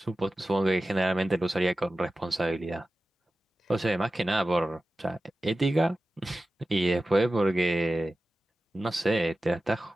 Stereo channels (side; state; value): both; normal; correlation 0.95